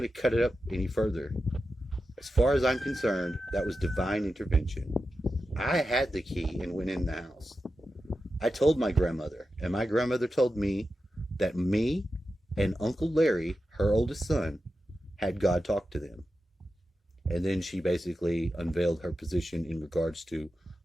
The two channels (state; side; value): normal; both; correlation 0.91